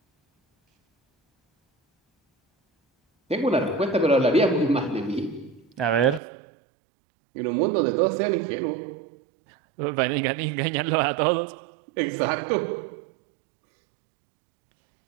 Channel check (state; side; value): drops out; left; at 6.2 s